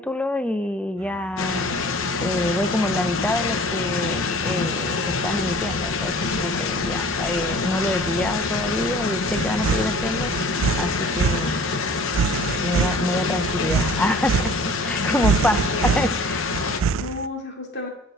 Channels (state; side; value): normal; both; correlation 0.47